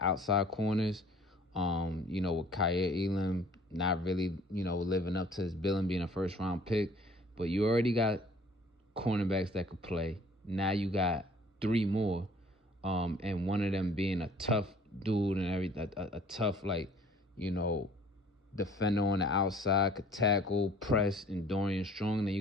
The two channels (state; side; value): normal; both; correlation 0.53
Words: outside corners. With Kyer Elam not really, living up to his billing, being a first-round pick. But you already got cornerbacks that could play. Now you got 3 more, and one of them being a tough dude and everything, a tough, defender on the outside, could tackle, press, and Dorian Strong. Then